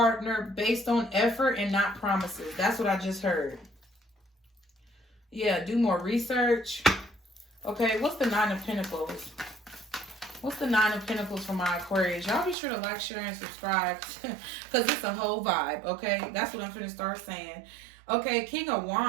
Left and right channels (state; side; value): drops out; left; at 12.6 s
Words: based on effort and not promises. That's what I just heard. Yeah, do more research. Okay, what's the 9 of Pentacles? What's the 9 of Pentacles for my Aquarius? Y'all be sure to like, share, and subscribe because it's a whole vibe, okay? That's what I'm finna start saying. Okay, King of